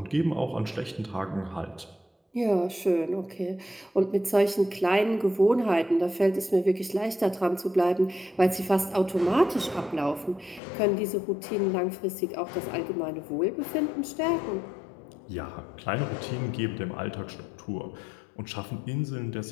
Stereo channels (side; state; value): right; drops out; at 10.6 s